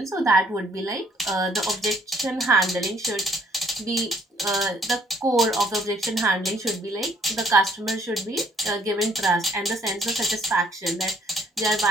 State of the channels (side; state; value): both; normal; correlation 0.64